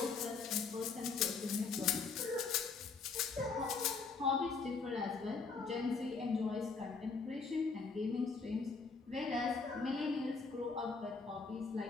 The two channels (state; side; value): quieter; right; 4.7 dB